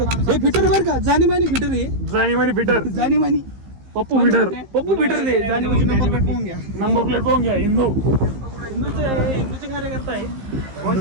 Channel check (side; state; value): left; late; 15 ms